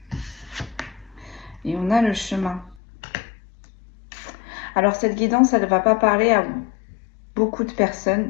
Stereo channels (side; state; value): right; drops out; at 2.8 s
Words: Et on a le chemin. Alors cette guidance, elle ne va pas parler à vous. beaucoup de